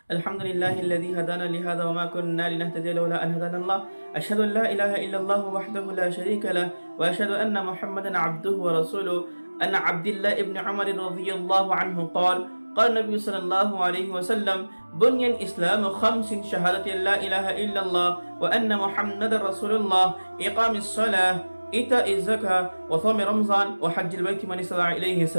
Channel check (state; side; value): inverted; both; correlation -1.00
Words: الحمد لله الذي هدانا لهذا وما كنا لنهتدي لولا أن هدانا الله أشهد أن لا إله إلا الله وحده لا شريك له وأشهد أن محمدا عبده ورسوله أن عبد الله ابن عمر رضي الله عنه قال النبي صلى الله عليه وسلم بني الإسلام خمس شهادة لا إله إلا الله وأن محمد رسول الله إقام الصلاة إيتاء الزكاة وصوم رمضان وحج البيت من استطاع إليه